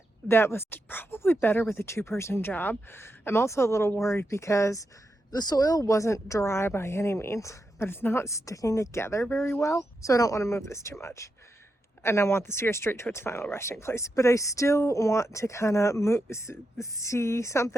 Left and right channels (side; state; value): both; normal; correlation 0.86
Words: that was probably better with a two-person job. I'm also a little worried because the soil wasn't dry by any means, but it's not sticking together very well. So I don't want to move this too much. And I want the steer straight to its final resting place. But I still want to kind of see